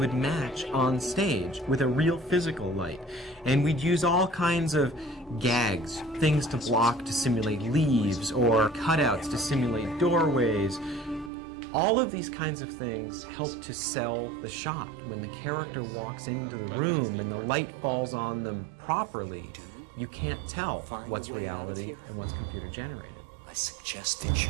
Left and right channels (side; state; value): left; drops out; at 11.3 s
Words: match on stage with a real physical light. And we'd use all kinds of gags, things to block to simulate leaves, or cutouts to simulate doorways. All of these kinds of things help to sell the shot. When the character walks into the room and the light falls on them properly, you can't tell what's reality and what's computer-generated. I suggest that